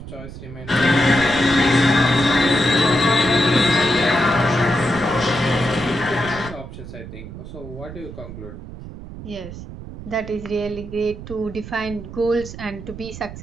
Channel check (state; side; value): noise; right; rumble, 12 dB below the sound